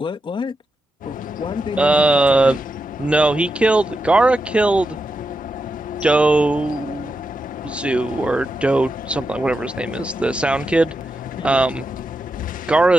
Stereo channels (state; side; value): normal; both; correlation 0.87